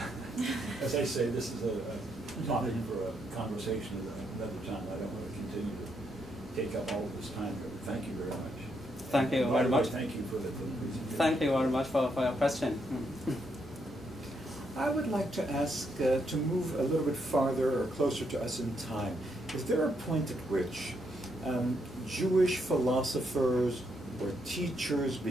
As I say, this is a topic for a conversation at another time. I don't want to continue to take up all of this time. Thank you very much. Thank you very much. Thank you for the presentation. Thank you very much for your question. I would like to ask to move a little bit farther or closer to us in time. Is there a point at which Jewish philosophers or teachers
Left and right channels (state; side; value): normal; both; correlation 0.77